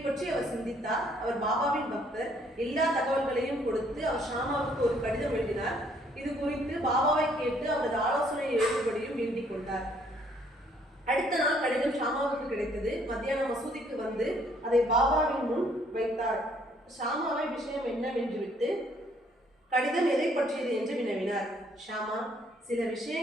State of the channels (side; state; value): both; normal; correlation 0.65